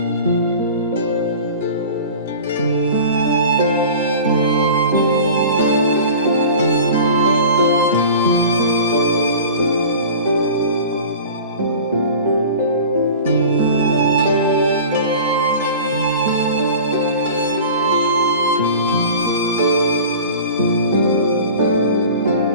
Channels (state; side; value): inverted; both; correlation -0.39